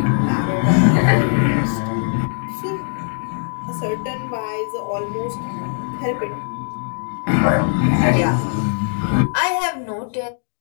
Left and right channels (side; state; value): right; silent; digital silence